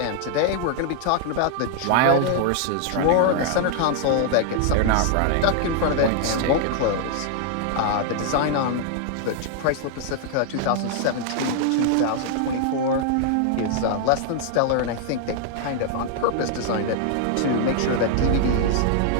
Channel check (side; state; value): both; different; correlation 0.00